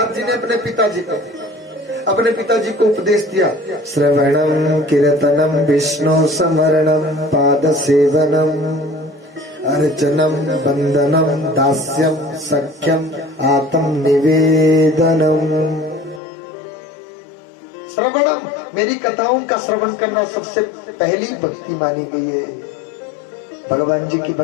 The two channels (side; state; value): right; drops out; at 16.2 s